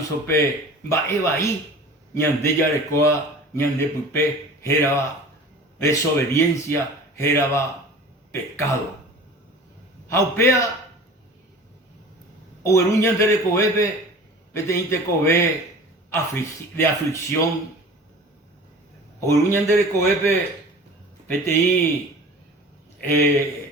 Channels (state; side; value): normal; both; correlation 0.41